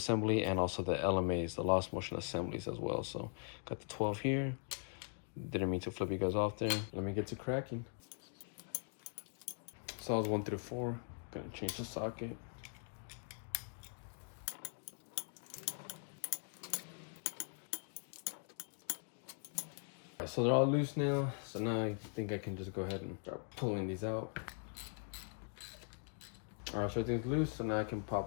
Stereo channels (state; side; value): silent; right; 50 dB below the other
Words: and also the LMAs, the lost motion assemblies as well. So got the 12 here. Didn't mean to flip you guys off there. Let me get to cracking. Cells 1 through 4. Gonna change the socket. So they're all loose now. So now I think I can just go ahead and start pulling these out. All right, so everything's loose. So now I can